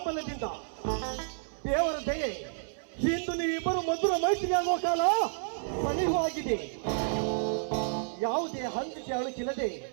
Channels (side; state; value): left; silent; 57 dB below the other